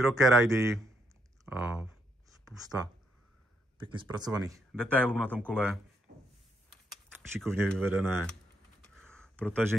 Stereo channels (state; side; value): normal; both; correlation 0.76